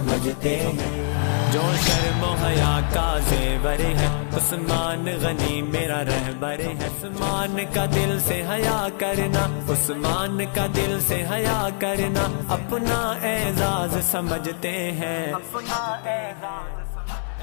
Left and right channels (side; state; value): right; silent; digital silence